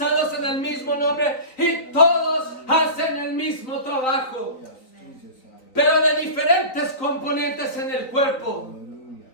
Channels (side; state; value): right; late; 3.9 ms